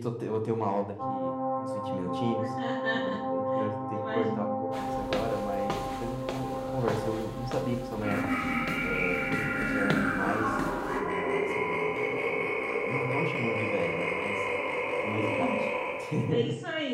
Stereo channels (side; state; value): both; identical; correlation 1.00